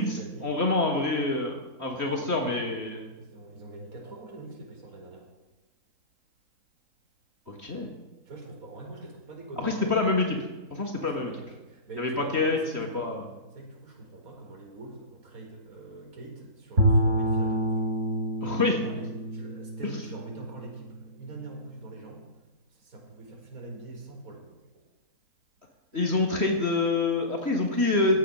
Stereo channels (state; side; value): late; left; 3.1 ms